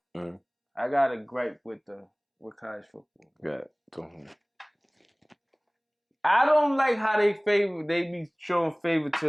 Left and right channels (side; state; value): both; identical; correlation 1.00